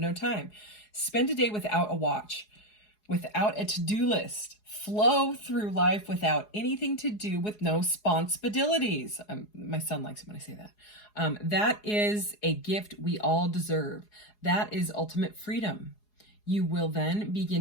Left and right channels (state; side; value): late; right; 4.8 ms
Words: time? Spend a day without a watch, without a to-do list. Flow through life without anything to do, with no responsibilities. My son likes it when I say that. That is a gift we all deserve. That is ultimate freedom. You will then